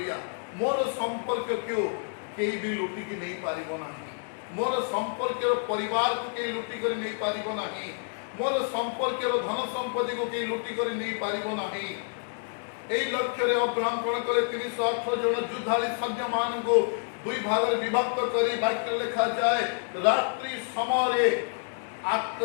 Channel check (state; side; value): silent; right; 59 dB below the other